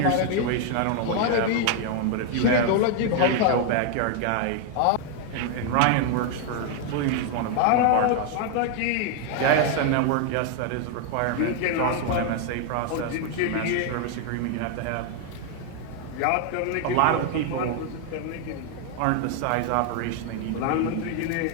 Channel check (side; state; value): both; different; correlation 0.00